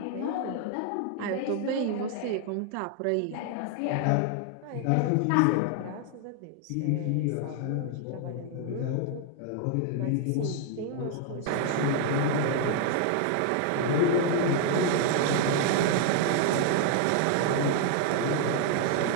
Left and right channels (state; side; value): different; both; correlation 0.00